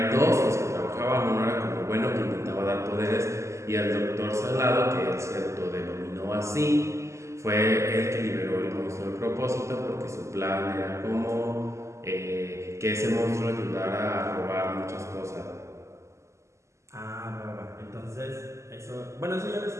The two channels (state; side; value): late; left; 0.14 ms